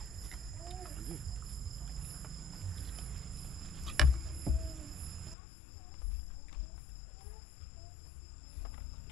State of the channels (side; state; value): right; drops out; at 5.4 s